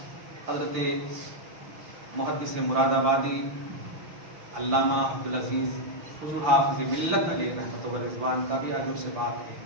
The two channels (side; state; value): left; late; 5.8 ms